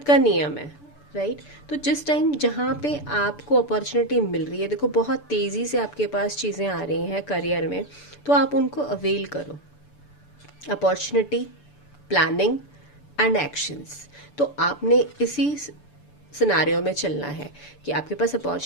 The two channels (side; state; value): right; late; 6.9 ms